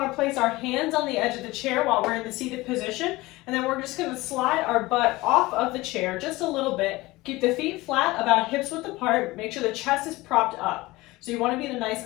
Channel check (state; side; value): quieter; right; 20.3 dB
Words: to place our hands on the edge of the chair while we're in the seated position. And then we're just going to slide our butt off of the chair just a little bit. Keep the feet flat, about hips width apart. Make sure the chest is propped up. So you want to be in a nice